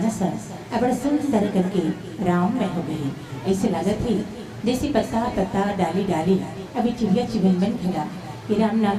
बड़ा सुंदर करके राम में हो गई। ऐसे लागत ही जैसे पत्ता पत्ता डाली डाली अभी चिड़िया चिवन बन खड़ा कि राम नाम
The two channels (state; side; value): identical; both; correlation 1.00